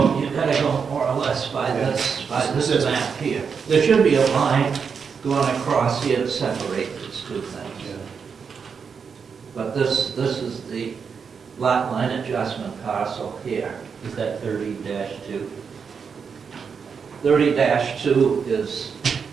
more or less by Yeah. this map here. There should be a line going across here to separate these two things. Yeah. But this is the lot line adjustment parcel here. Is that 30-2? 30-2 is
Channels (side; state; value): left; quieter; 6.1 dB